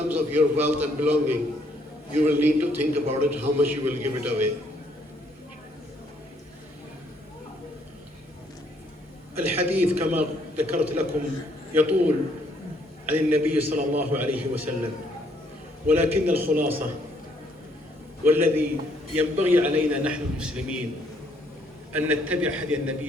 of your wealth and belonging, you will need to think about it, how much you will give it away. الحديث كما ذكرت لكم يطول عن النبي صلى الله عليه وسلم، ولكن الخلاصة والذي ينبغي علينا نحن المسلمين أن نتبع هدي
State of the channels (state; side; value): normal; both; correlation 0.68